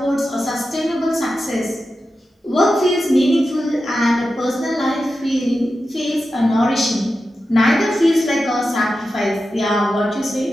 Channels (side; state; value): both; normal; correlation 0.91